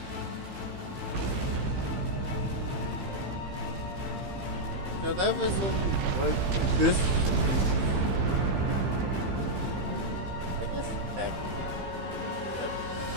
So that was only what this. I guess attack.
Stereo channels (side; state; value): left; late; 15 ms